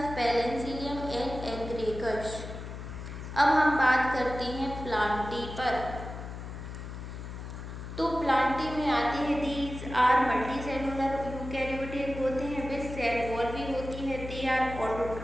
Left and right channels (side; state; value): left; noise; hum, 9 dB below the sound